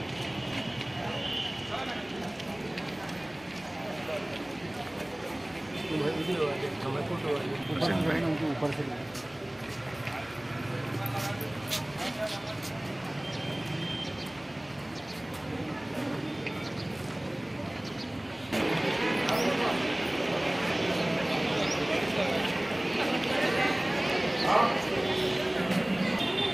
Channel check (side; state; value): left; noise; hum, 27 dB below the sound